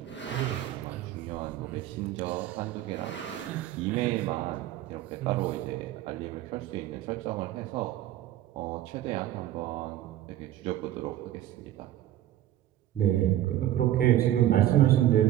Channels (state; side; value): quieter; left; 12.9 dB